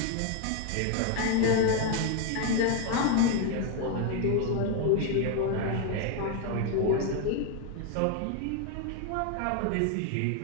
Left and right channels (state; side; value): different; both; correlation 0.01